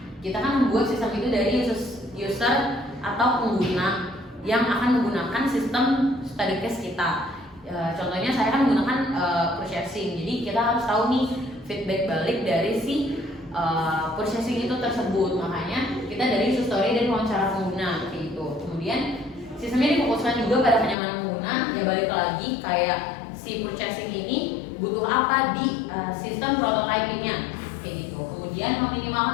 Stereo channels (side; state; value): right; drops out; at 21.0 s